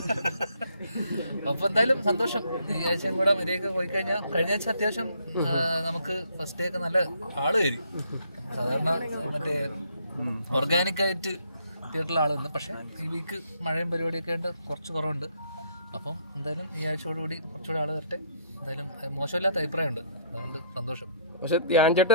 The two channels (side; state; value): both; inverted; correlation -0.67